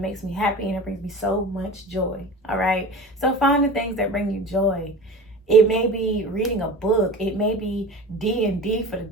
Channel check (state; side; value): normal; both; correlation 0.35